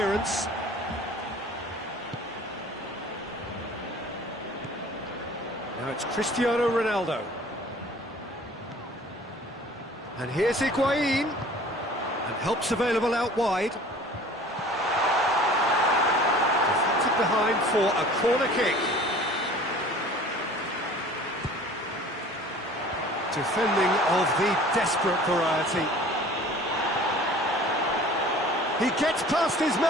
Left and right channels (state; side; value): normal; both; correlation 0.46